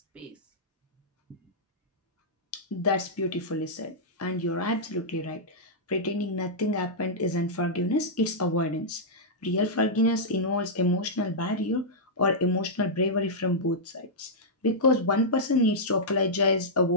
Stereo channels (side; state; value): both; normal; correlation -0.10